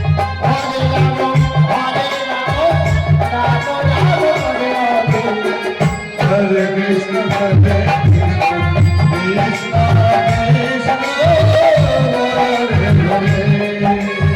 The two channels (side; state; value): both; identical; correlation 1.00